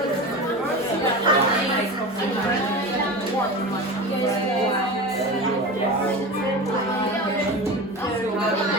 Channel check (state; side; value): normal; both; correlation 0.28